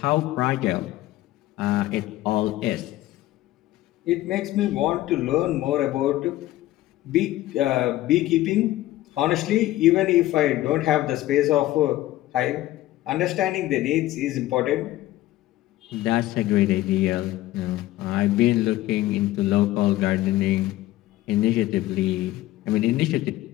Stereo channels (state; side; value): quieter; right; 15.8 dB